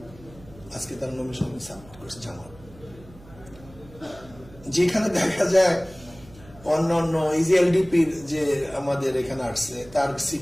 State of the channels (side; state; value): right; noise; hum, 21 dB below the sound